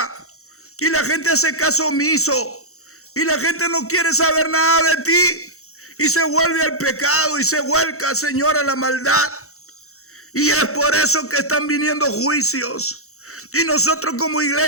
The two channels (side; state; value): right; late; 0.64 ms